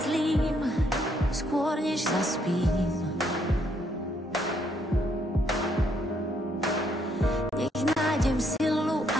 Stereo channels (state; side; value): normal; both; correlation 0.71